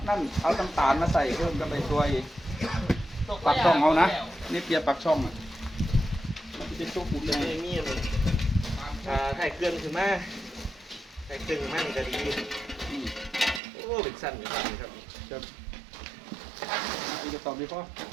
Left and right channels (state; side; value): drops out; left; at 13.6 s